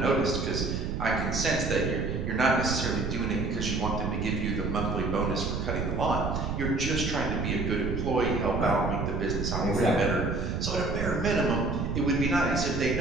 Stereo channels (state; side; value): noise; right; rumble, 2 dB below the sound